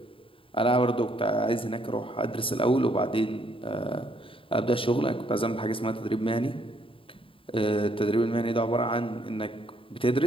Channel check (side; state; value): right; late; 0.26 ms